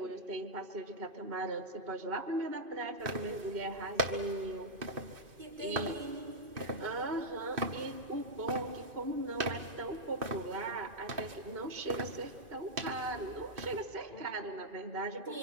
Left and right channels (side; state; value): left; late; 2.6 ms